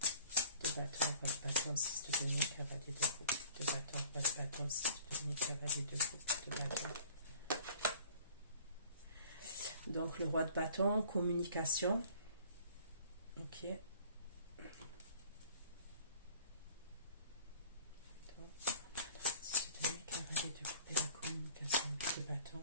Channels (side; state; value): both; inverted; correlation -0.50